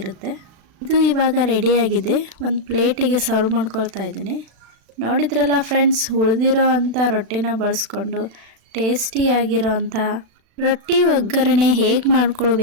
ಇದು ಇವಾಗ ರೆಡಿಯಾಗಿದೆ. ಒಂದು ಪ್ಲೇಟಿಗೆ ಸರ್ವ್ ಮಾಡ್ಕೊಳ್ತಾ ಇದ್ದೀನಿ. ನೋಡಿದ್ರಲ್ಲ ಫ್ರೆಂಡ್ಸ್, ಉಳಿದಿರೋ ಅಂಥ ರೊಟ್ಟಿನ ಬಳಸ್ಕೊಂಡು ಟೇಸ್ಟಿಯಾಗಿರೋ ಅಂಥ ರೊಟ್ಟಿ ಒಗ್ಗರಣೆ ಹೇಗೆ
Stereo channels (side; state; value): left; late; 36 ms